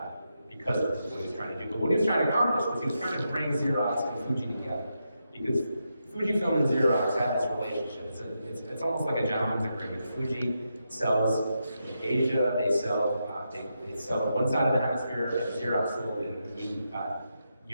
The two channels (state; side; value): inverted; both; correlation -0.85